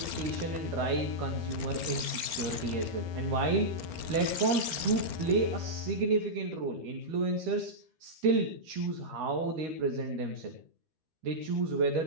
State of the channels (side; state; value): left; late; 13 ms